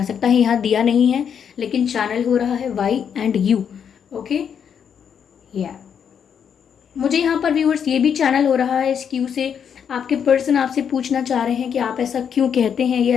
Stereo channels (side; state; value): right; quieter; 7.7 dB